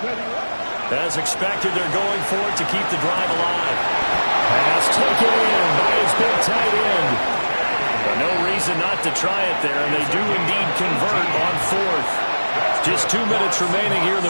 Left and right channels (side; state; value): both; inverted; correlation -1.00